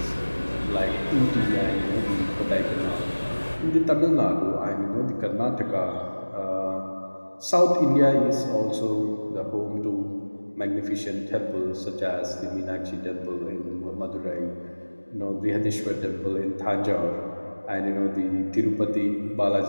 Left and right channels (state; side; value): inverted; both; correlation -1.00